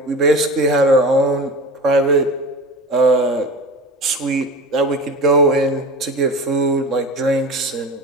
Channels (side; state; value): both; normal; correlation 0.32